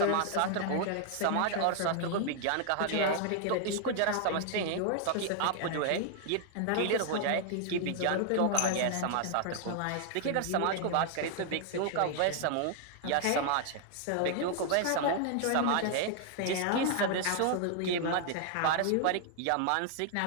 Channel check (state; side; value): different; both; correlation 0.00